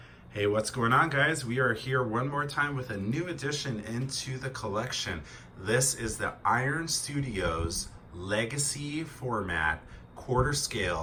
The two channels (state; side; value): identical; both; correlation 1.00